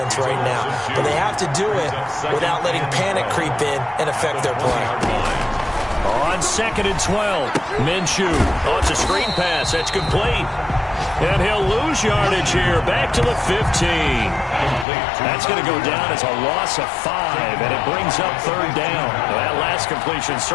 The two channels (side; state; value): right; drops out; at 14.9 s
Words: right now. But they have to do it without letting panic creep in and affect their play. On 2nd and 12, Minshew. Oh, it's a screen pass. That's complete. And he'll lose yardage here. Back to the 15. That's going to go down as a loss of 5, and it brings up 3rd down. Well, that last completion